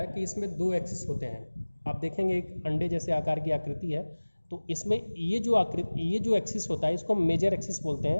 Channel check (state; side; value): inverted; both; correlation -1.00